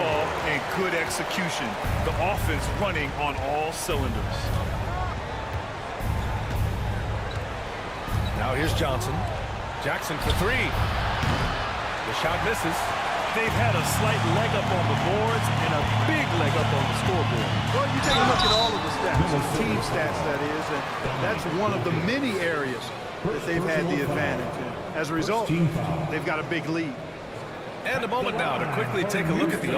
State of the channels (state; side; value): identical; both; correlation 1.00